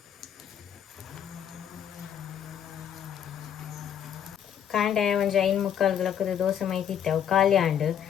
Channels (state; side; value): quieter; right; 9.2 dB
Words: ಕಾಂಡೆ ಒಂಜಿ 5:45 ದೋಸೆ ಮೈತಿತ್ತೆ. ಅವು ಖಾಲಿ ಆಂಡ್